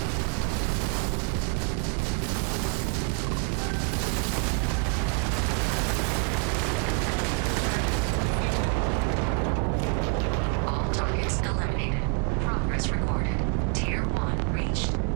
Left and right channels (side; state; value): left; quieter; 39.9 dB